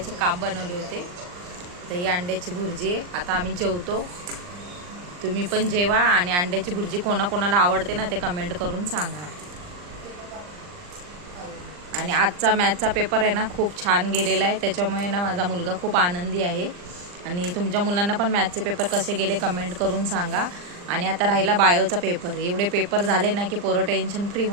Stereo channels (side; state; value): left; late; 39 ms